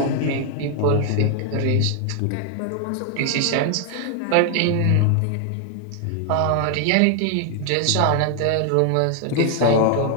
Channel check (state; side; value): different; both; correlation 0.00